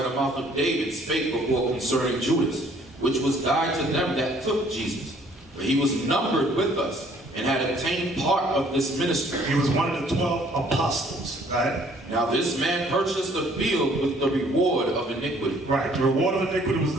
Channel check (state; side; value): normal; both; correlation 0.60